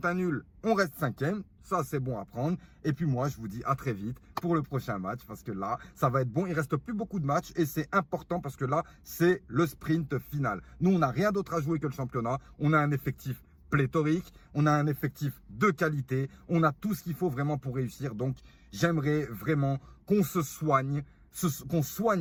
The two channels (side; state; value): both; identical; correlation 1.00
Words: un nul, on reste 5e. Ça, c'est bon à prendre. Et puis moi, je vous dis à très vite pour le prochain match parce que là, ça va être bon. Il reste plus beaucoup de matchs et c'est important parce que là, c'est le sprint final. Nous, on n'a rien d'autre à jouer que le championnat. On a un effectif pléthorique. On a un effectif de qualité. On a tout ce qu'il faut vraiment pour réussir. Donc, j'aimerais vraiment qu'on se soigne, qu'on